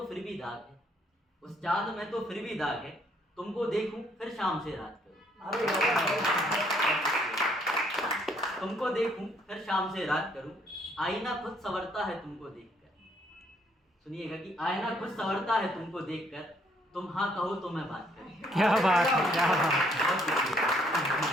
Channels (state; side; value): normal; both; correlation 0.67